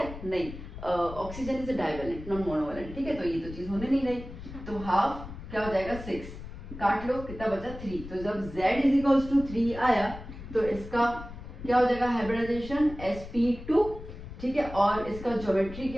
नहीं, oxygen is divalent, non monovalent. ठीक है, तो ये तो चीज होने नहीं रही, तो हाफ क्या हो जाएगा? 6। काट लो, कितना बचा? 3। तो जब Z इज 3 आया तो इसका क्या हो जाएगा? Hybridisation sp2। ठीक है, और इसका ज्योमेट्री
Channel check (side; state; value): left; noise; rumble, 12 dB below the sound